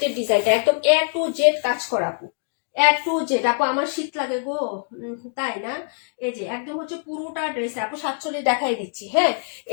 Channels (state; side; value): silent; right; 61 dB below the other